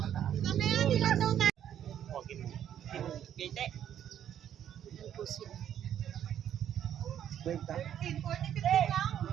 Gate. Yan po sila.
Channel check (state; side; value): quieter; left; 10.1 dB